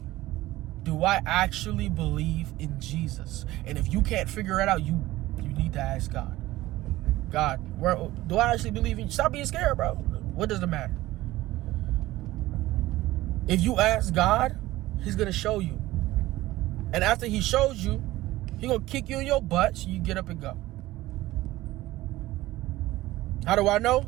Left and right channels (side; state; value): left; quieter; 17.0 dB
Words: Do I actually believe in Jesus? And if you can't figure it out, you need to ask God. God, do I actually believe in you? Stop being scared, bro. What does it matter? If you ask God, he's going to show you. And after he shows you, he's going to kick you in your butt so you get up and go. How do I know?